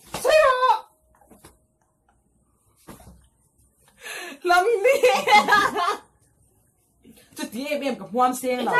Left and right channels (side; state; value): both; identical; correlation 1.00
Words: 所以我。lâm đi chút tí em gặp hoan sen